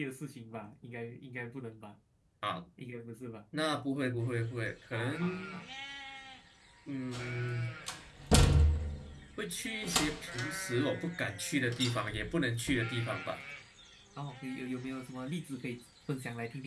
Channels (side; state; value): both; identical; correlation 1.00